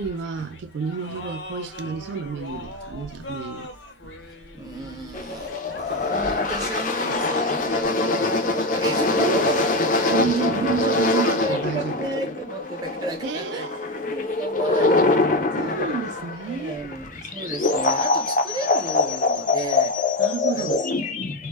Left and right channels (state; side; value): normal; both; correlation 0.14